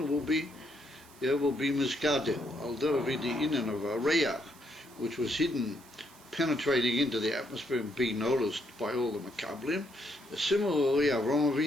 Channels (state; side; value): noise; right; hiss, 24 dB below the sound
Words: will be Miskadel. Although the inyan of Reach, which was hidden, penetrating into the atmosphere and being noticed by all the Makablim. Similarly, Avraham